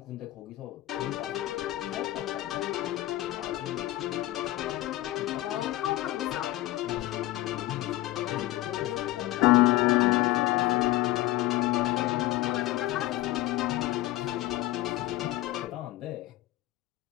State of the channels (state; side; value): quieter; right; 16.6 dB